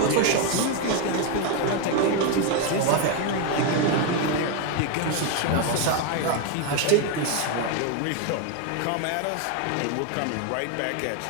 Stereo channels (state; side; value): different; both; correlation 0.01